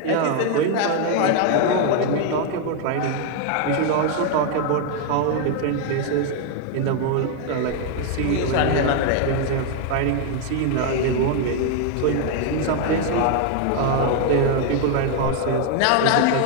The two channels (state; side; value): different; both; correlation 0.01